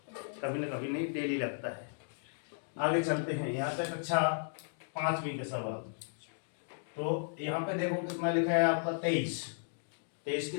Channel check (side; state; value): right; silent; digital silence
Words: कभी ना कभी, नहीं डेली लगता है। आगे चलते हैं। यहाँ पे कक्षा 5वीं का सवाल। तो यहाँ पे देखो कितना लिखा है आपका 23। 23 की